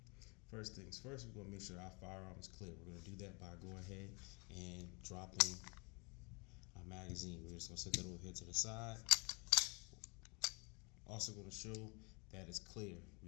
First things first, we're going to make sure our firearm is clear. We're going to do that by going ahead and dropping our magazine. We're just going to set that over here to the side. Also going to show that it's clear.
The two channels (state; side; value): quieter; right; 30.3 dB